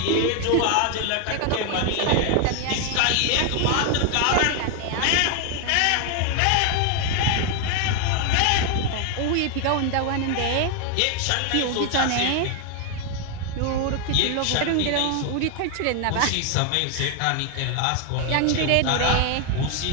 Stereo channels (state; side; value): different; both; correlation 0.01